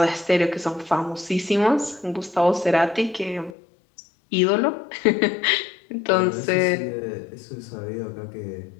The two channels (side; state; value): right; drops out; at 3.5 s